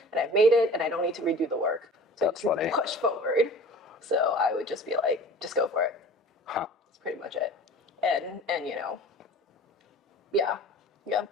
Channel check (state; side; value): normal; both; correlation 0.42